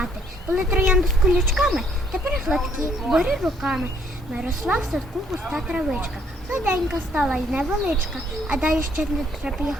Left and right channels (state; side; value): normal; both; correlation 0.66